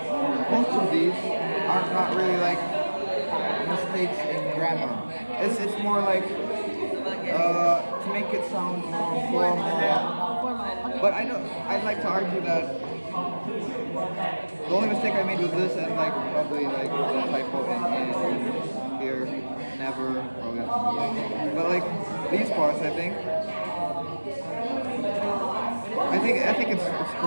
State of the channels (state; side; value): inverted; both; correlation -1.00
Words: most of these are not really like mistakes in grammar. It's more like to make it sound more formal. But I'd like to argue that the only mistake I made was this and like probably like the typo in here, never, probably. But like these parts, I think it's